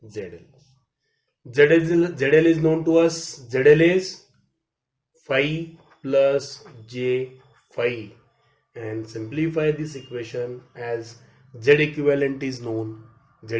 ZL. ZL is known to us. ZL is phi plus J phi, and simplify this equation as Z equivalent is known. Z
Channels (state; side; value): identical; both; correlation 1.00